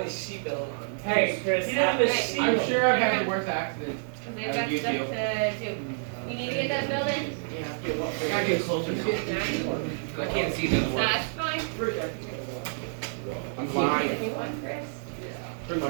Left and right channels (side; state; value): left; silent; digital silence